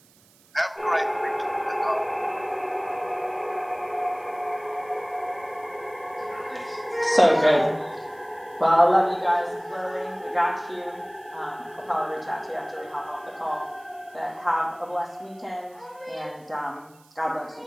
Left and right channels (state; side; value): noise; right; hiss, 29 dB below the sound